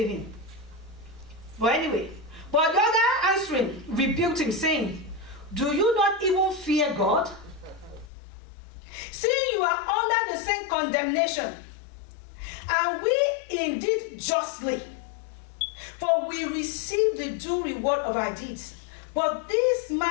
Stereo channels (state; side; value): drops out; right; at 8.1 s